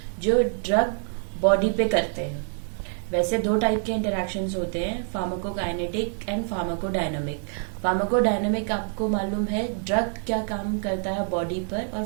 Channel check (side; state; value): left; silent; 61 dB below the other